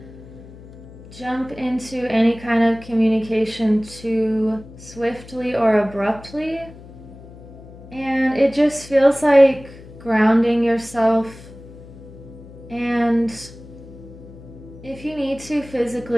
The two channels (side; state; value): left; noise; hum, 18 dB below the sound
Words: jump into any kind of communication too swiftly or abruptly. And it just feels like grounding yourself. And if you need to